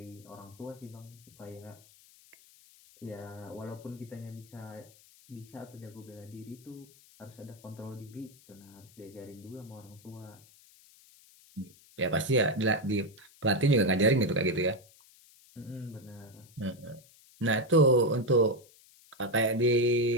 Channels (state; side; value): noise; left; hiss, 25 dB below the sound